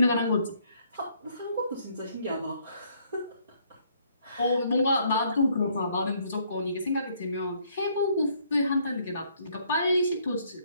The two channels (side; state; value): both; inverted; correlation -0.67